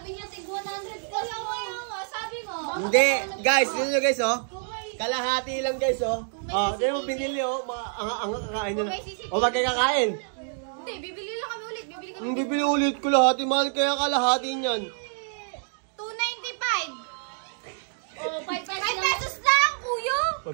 niya, tig 100 ka lang. Sabi mo. Hindi. Guys, sino nyo guys oh? Kalahati lang guys oh. Oh, di mo binili oh. Ang kakain nyo na. O wag kayo kakain. Hindi, bibili lang kami ulit. Bibili kami. Hindi bibili ulit ko lahati. Mahal kaya kalahati niyan. 295. Oh, 5 5 pesos lang, kuya.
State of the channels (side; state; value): left; silent; digital silence